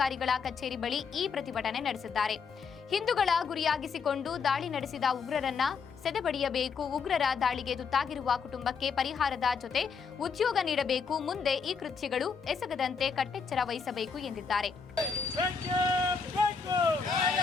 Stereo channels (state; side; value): quieter; right; 5.6 dB